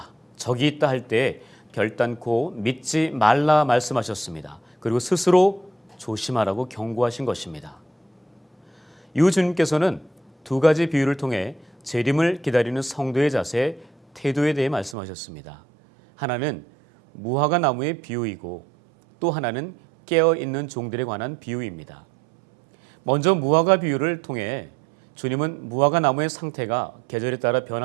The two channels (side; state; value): left; drops out; at 15.0 s